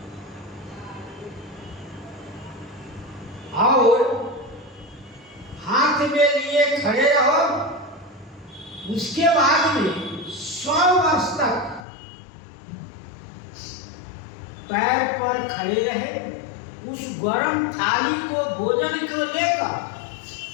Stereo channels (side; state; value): right; drops out; at 11.9 s